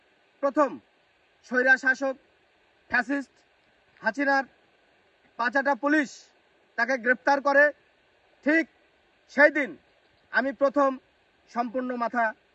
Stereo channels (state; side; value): identical; both; correlation 1.00